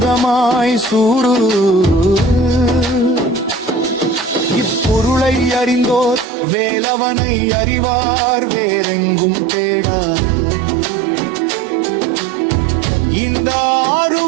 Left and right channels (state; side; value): drops out; left; at 6.2 s